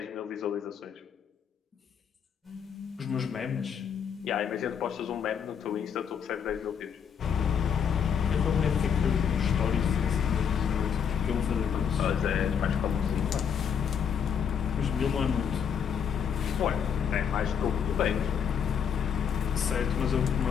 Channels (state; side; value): quieter; right; 7.5 dB